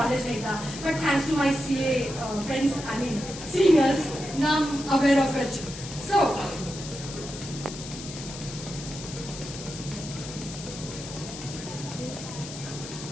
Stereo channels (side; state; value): left; noise; hiss, 11 dB below the sound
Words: नहीं था, but thanks to my CA friends, I mean seniors, now I am aware of it. So